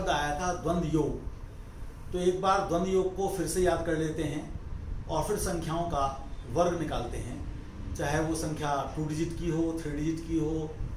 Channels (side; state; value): both; identical; correlation 1.00